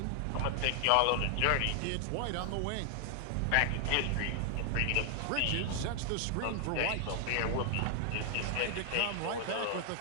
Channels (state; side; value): different; both; correlation 0.00